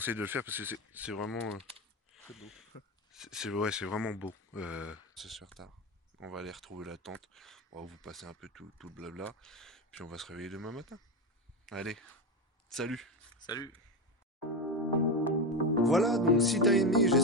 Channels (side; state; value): both; normal; correlation 0.15